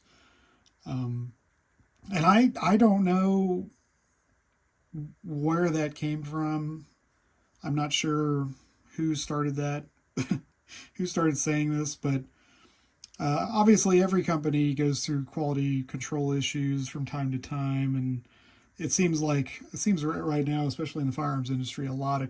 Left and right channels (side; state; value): both; identical; correlation 1.00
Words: Um, and I don't know where that came from. I'm not sure who started that, who started saying this, but obviously every company goes through quality control issues from time to time, and it seems right now, especially in the firearms industry, a lot of